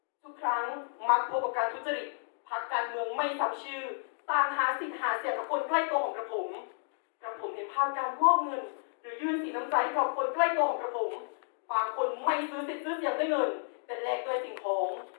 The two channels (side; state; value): right; silent; digital silence